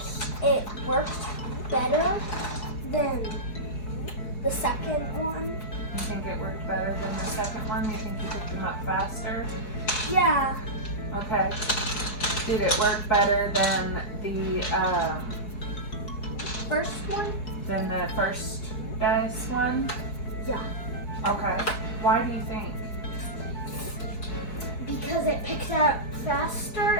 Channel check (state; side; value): late; right; 4.7 ms